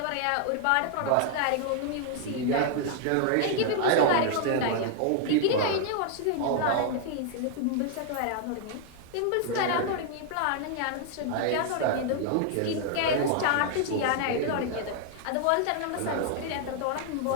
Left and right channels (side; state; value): both; different; correlation 0.00